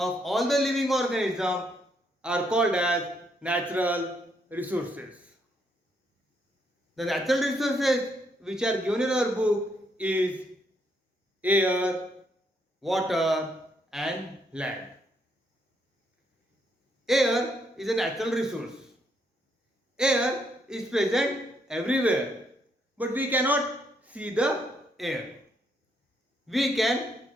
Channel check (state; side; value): normal; both; correlation 0.74